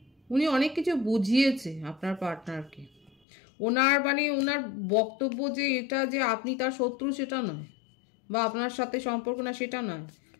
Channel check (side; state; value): right; drops out; at 3.2 s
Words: উনি অনেক কিছু বুঝিয়েছে আপনার পার্টনারকে। ওনার বক্তব্য যে এটা যে আপনি তার শত্রু সেটা নয়, বা আপনার সাথে সম্পর্ক না সেটা নয়।